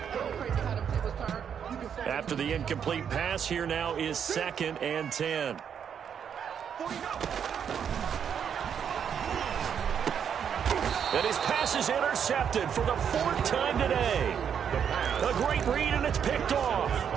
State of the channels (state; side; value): quieter; left; 7.9 dB